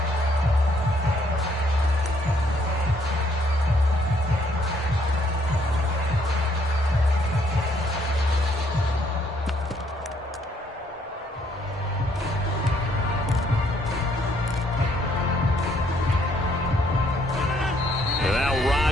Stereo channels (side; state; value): both; normal; correlation 0.68